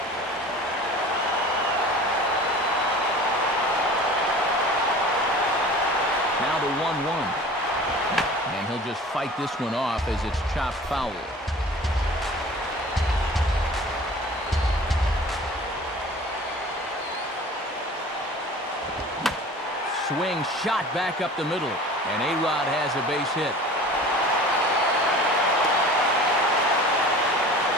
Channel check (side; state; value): both; normal; correlation 0.42